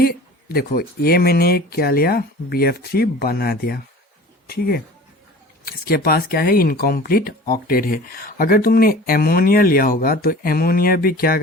देखो ये मैंने क्या लिया, BF3 बना दिया, ठीक है। इसके पास क्या है, इनकम्प्लीट ऑक्टेट है। अगर तुमने एमोनिया लिया होगा तो एमोनिया भी क्या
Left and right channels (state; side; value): normal; both; correlation 0.41